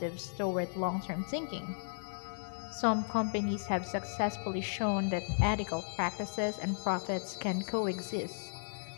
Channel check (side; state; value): right; silent; digital silence